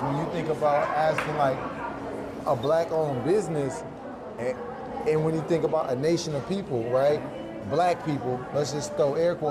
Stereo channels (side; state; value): both; identical; correlation 1.00